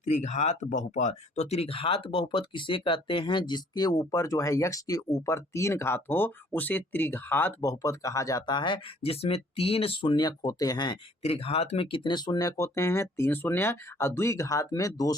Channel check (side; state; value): both; normal; correlation 0.59